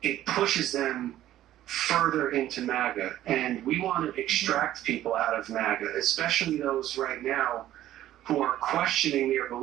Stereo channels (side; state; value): left; quieter; 13.2 dB